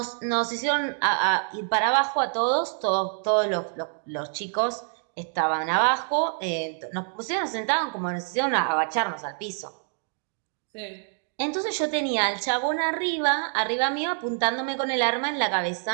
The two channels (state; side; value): silent; left; 61 dB below the other